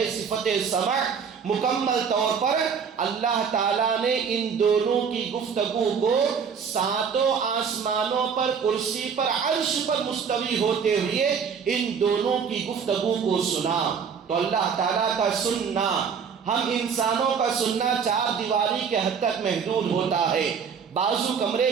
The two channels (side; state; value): left; quieter; 6.6 dB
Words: صفت سمع، مکمل طور پر اللہ تعالیٰ نے ان دونوں کی گفتگو کو ساتوں آسمانوں پر، کرسی پر، عرش پر مستوی ہوتے ہوئے ان دونوں کی گفتگو کو سنا. تو اللہ تعالیٰ کا سننا، ہم انسانوں کا سننا چار دیواری کے حد تک محدود ہوتا ہے. بازو کمرے